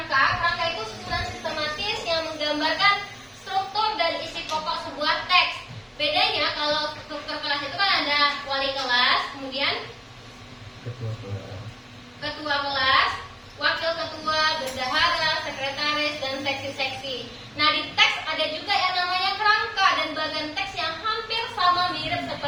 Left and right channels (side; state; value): both; identical; correlation 1.00